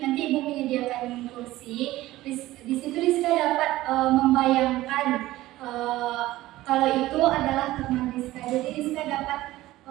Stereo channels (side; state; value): left; quieter; 16.6 dB